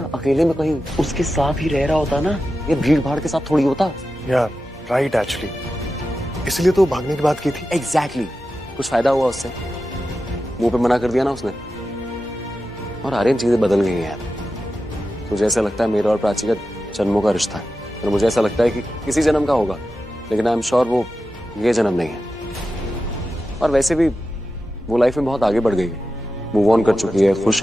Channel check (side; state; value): both; normal; correlation 0.92